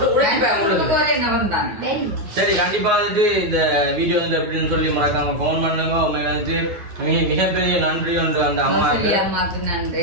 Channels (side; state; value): left; late; 9.7 ms